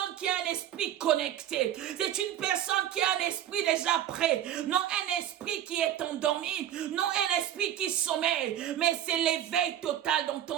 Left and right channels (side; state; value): left; quieter; 11.3 dB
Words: qui a un esprit connecté. C'est une personne qui a un esprit déjà prêt. Non un esprit qui est endormi. Non un esprit qui sommeille. Mais c'est l'éveil total